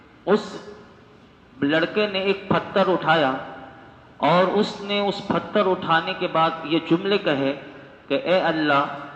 اس لڑکے نے ایک پتھر اٹھایا اور اس نے اس پتھر اٹھانے کے بعد یہ جملے کہے کہ اے اللہ،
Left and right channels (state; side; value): identical; both; correlation 1.00